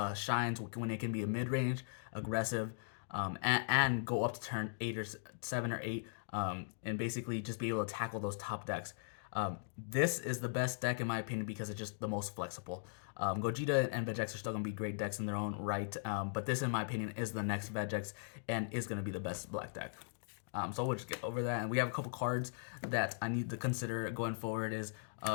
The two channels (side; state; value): right; silent; digital silence